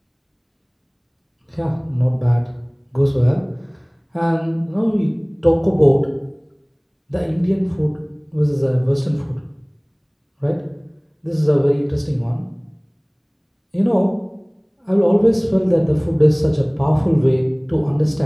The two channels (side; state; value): both; identical; correlation 1.00